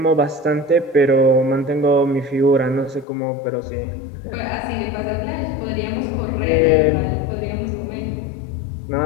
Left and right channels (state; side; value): drops out; right; at 3.1 s